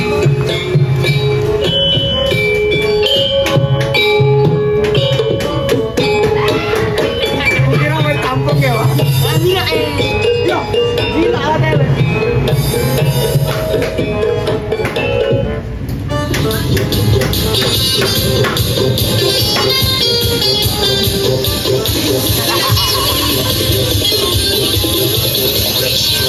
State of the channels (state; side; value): identical; both; correlation 1.00